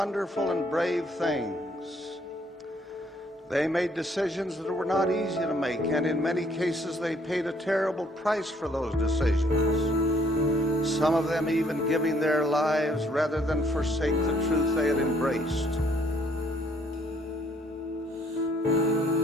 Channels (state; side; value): normal; both; correlation 0.65